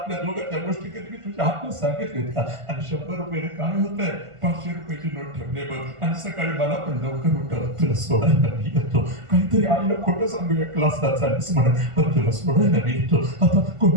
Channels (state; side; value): late; left; 1.5 ms